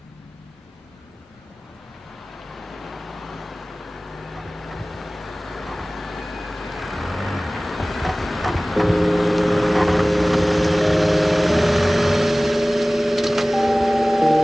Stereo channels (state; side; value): normal; both; correlation 0.98